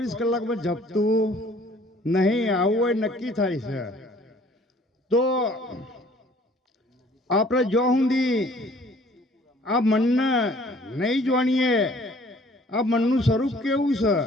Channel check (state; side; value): normal; both; correlation 0.55